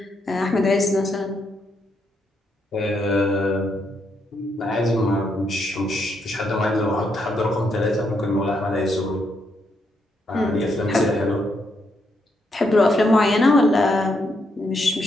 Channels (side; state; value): both; normal; correlation 0.78